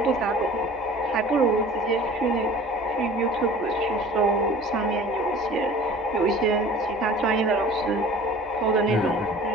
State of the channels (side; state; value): both; normal; correlation 0.45